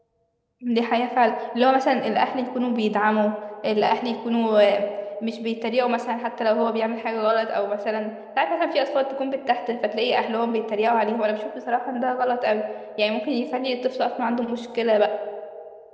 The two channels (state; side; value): identical; both; correlation 1.00